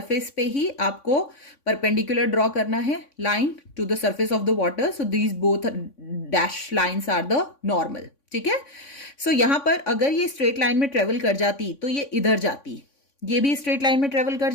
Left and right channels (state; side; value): late; right; 3.5 ms